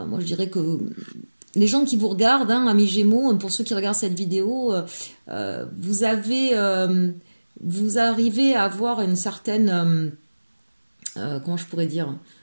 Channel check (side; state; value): both; inverted; correlation -1.00